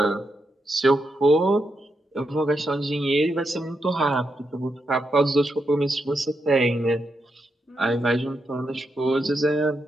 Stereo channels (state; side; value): normal; both; correlation 0.84